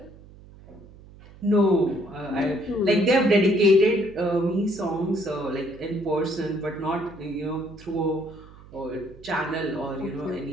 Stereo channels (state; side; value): noise; right; hum, 21 dB below the sound